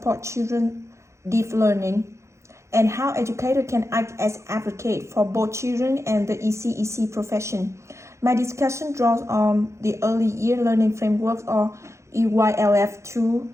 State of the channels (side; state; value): left; late; 0.14 ms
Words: children deep learning, and how educators can act as advocate for both children and the ECEC profession. My discussion draws on the Early Year Learning Framework, or EYLF